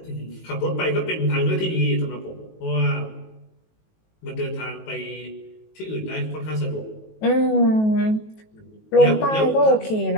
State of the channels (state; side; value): late; right; 19 ms